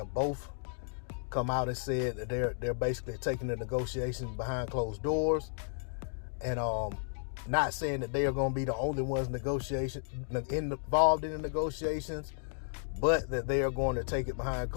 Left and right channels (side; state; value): right; silent; digital silence